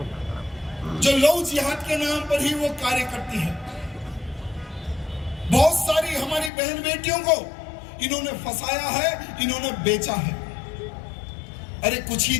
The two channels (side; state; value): right; drops out; at 6.5 s